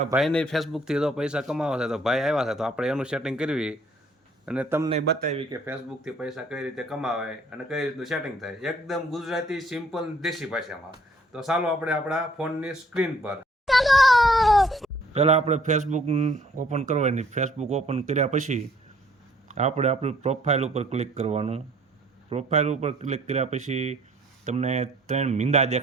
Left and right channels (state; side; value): normal; both; correlation 0.60